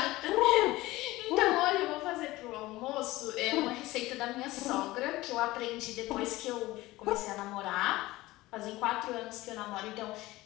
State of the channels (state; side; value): quieter; right; 18.6 dB